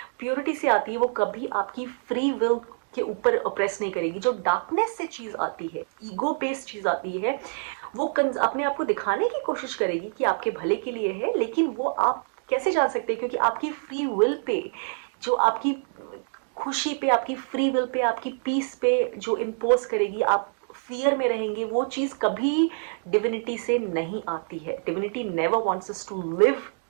प्योरिटी से आती है, वो कभी आपकी फ्री विल के ऊपर प्रेस नहीं करेगी। जो डार्कनेस से चीज आती है, ईगो बेस्ड चीज आती है, वो अपने आप को दिखाने की कोशिश करेगी कि आपके भले के लिए है, लेकिन वो आप कैसे जान सकते हैं, क्योंकि आपकी फ्री विल पे, जो आपकी खुशी पे, आपकी फ्री विल पे, आपकी पीस पे जो इम्पोज करेगी, आप फियर में रहेंगे, वो चीज कभी डिविनिटी से नहीं आती है। Divinity never wants us to live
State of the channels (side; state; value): left; silent; digital silence